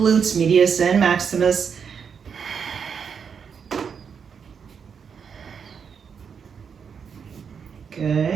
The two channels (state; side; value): quieter; left; 6.6 dB